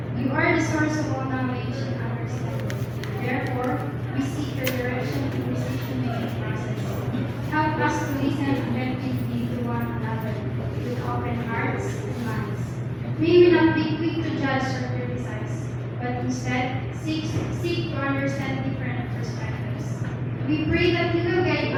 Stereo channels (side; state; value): both; identical; correlation 1.00